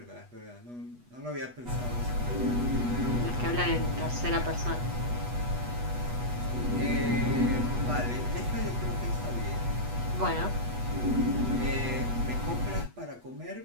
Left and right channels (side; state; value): left; late; 8.2 ms